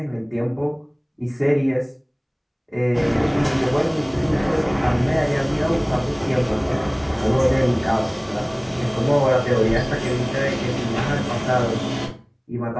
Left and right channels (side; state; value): both; identical; correlation 1.00